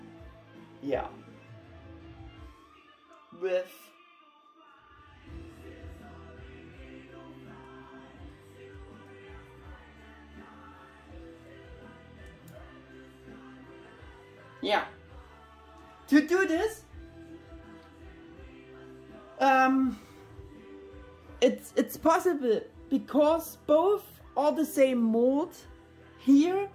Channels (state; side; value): identical; both; correlation 1.00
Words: Yeah. With yeah. To do this, it's possible because both are the same mold. Here